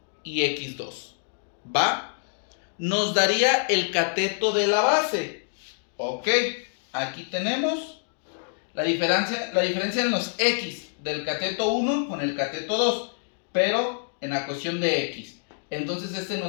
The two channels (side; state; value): right; silent; digital silence